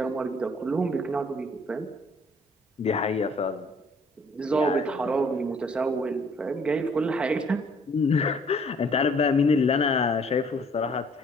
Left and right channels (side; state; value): both; normal; correlation 0.59